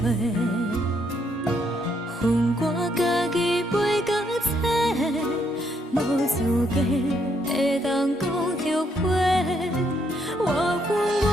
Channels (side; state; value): both; normal; correlation 0.73